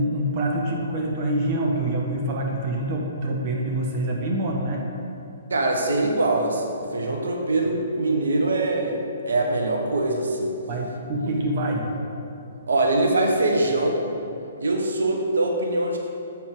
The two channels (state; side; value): inverted; both; correlation -0.59